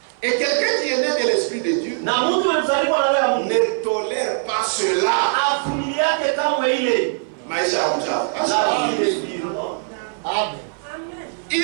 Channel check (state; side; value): silent; left; 58 dB below the other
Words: Et quelqu'un qui est né de l'Esprit de Dieu Na mtu mzaliwa na roho ya Mungu ne tolère pas cela. avumiliake kamwe ile. Maisha ya uchafu. La vie des spirits. Amen. Il